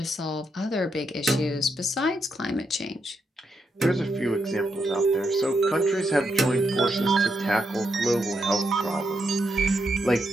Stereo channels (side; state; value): both; normal; correlation 0.81